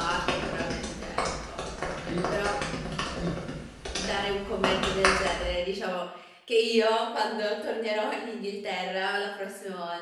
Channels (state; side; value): identical; both; correlation 1.00